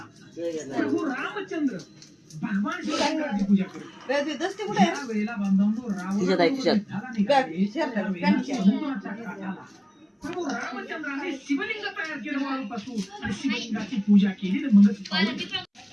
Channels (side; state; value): both; identical; correlation 1.00